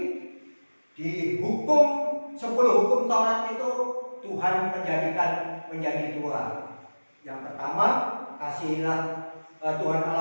di hukum 10 hukum Taurat itu Tuhan menjadikan menjadi 2. Yang pertama kasihilah Tuhan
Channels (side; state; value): both; inverted; correlation -1.00